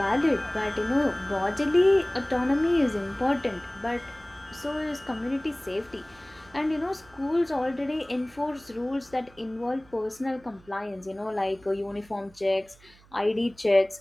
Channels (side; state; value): right; noise; hum, 27 dB below the sound